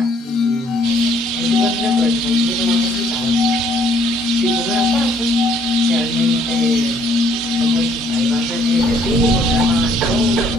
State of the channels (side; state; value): both; normal; correlation 0.64